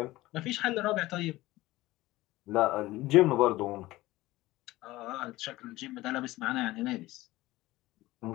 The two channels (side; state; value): right; quieter; 18.1 dB